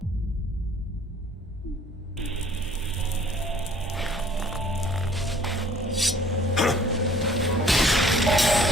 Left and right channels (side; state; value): both; normal; correlation 0.55